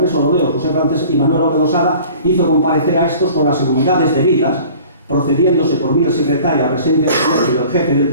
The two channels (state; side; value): inverted; both; correlation -0.46